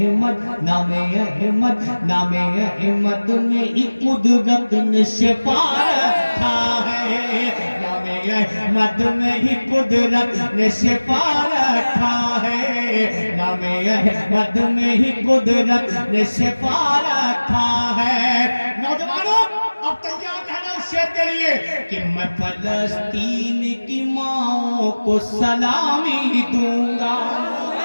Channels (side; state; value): both; inverted; correlation -1.00